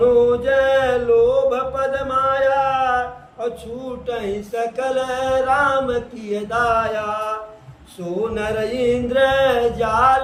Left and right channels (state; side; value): identical; both; correlation 1.00